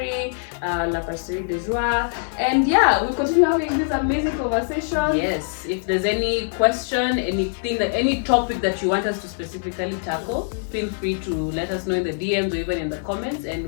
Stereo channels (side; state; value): right; silent; 64 dB below the other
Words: La Pasterie de Joie, and we'll continue having this amazing conversation. Yes. If there's any question, any topic that you want us to specifically tackle, feel free to let us know in the DMs or even in the comments, and